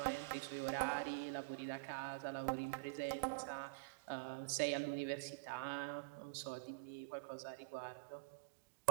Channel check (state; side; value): quieter; left; 34.4 dB